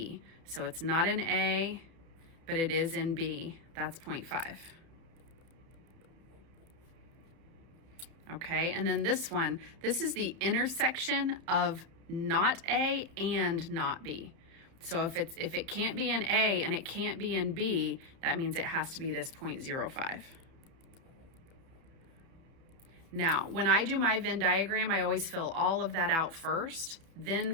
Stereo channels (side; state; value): left; late; 31 ms